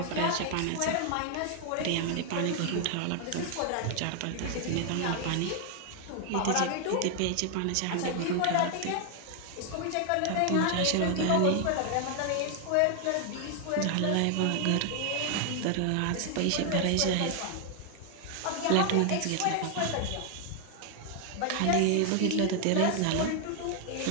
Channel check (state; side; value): different; both; correlation 0.00